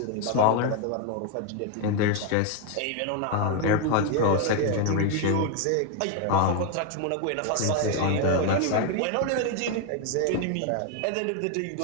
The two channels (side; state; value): both; different; correlation 0.01